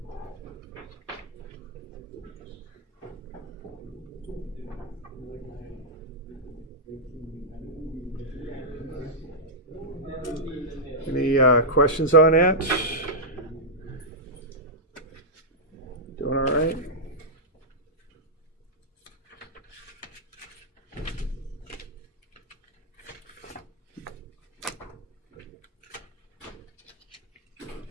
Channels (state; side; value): normal; both; correlation -0.10